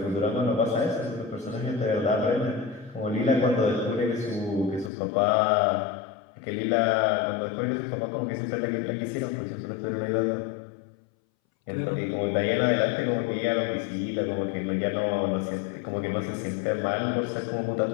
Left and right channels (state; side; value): drops out; right; at 4.9 s